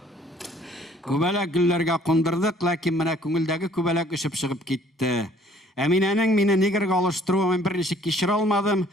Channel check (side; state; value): both; normal; correlation 0.58